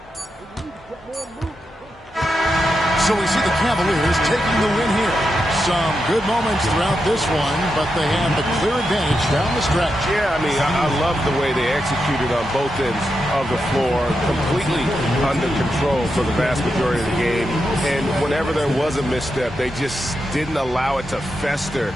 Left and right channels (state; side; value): normal; both; correlation 0.86